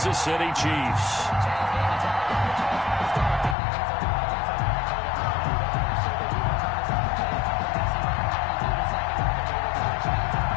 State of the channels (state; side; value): drops out; right; at 3.6 s